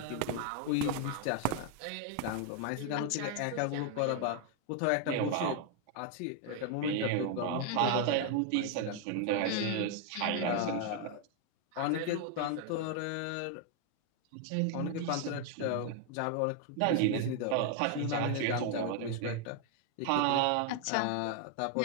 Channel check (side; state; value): both; different; correlation 0.00